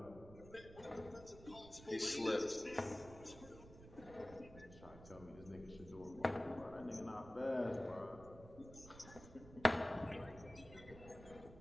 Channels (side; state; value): right; noise; rumble, 16 dB below the sound